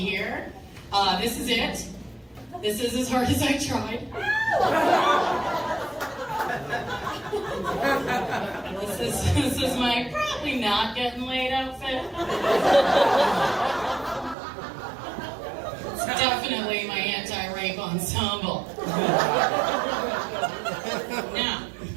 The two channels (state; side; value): drops out; left; at 14.4 s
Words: This is it. This is as hard as I tried. This is my probably not getting laid outfit. It's definitely my anti-rape ensemble. Now,